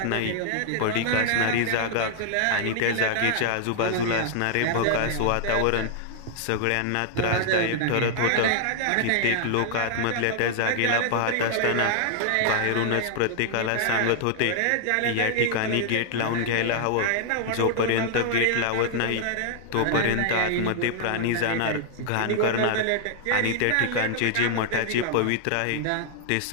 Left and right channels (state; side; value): different; both; correlation 0.00